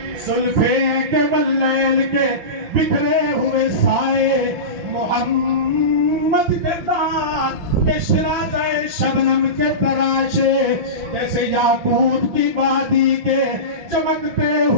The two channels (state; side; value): late; left; 6.0 ms